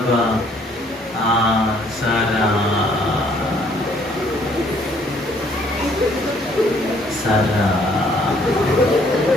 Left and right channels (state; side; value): normal; both; correlation 0.63